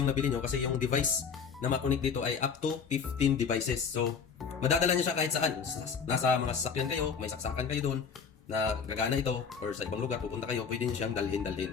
nabili nyo kasi yung device na makonect dito ay up to 15 devices. So, madadala nyo siya kahit saan. Nasa mga sasakyan kayo, may saksakan kayo doon na gagana ito, or sa ibang lugar pupunta kayo, pwede nyo siyang dalhin.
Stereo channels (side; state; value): right; quieter; 6.1 dB